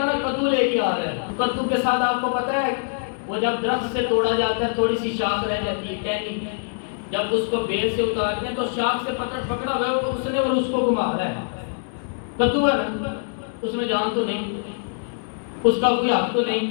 نا کدو لے کے آ رہا ہے. کدو کے ساتھ آپ کو پتا ہے وہ جب درخت سے توڑا جاتا ہے تھوڑی سی شاخ رہ جاتی ہے ٹہنی، جب اس کو بیل سے اتارتے ہیں تو شاخ سے پکڑا ہوا ہے اس نے اور اس کو گھما رہا ہے. کدو ہے نا، اس میں جان تو نہیں، اس کا کوئی حق تو نہیں.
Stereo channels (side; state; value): right; silent; 63 dB below the other